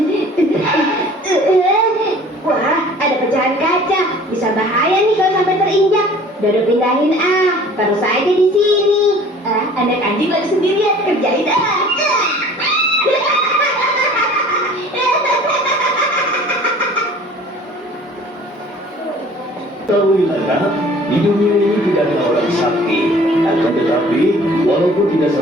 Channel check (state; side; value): normal; both; correlation 0.49